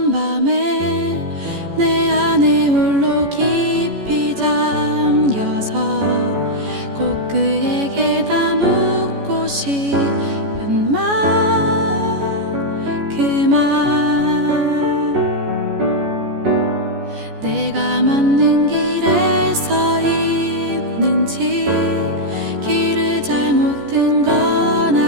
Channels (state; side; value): late; left; 14 ms